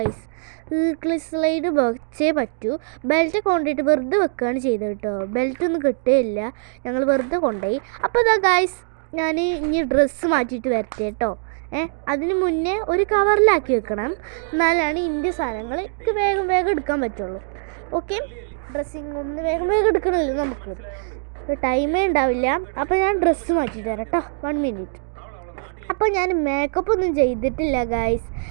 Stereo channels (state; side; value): silent; left; digital silence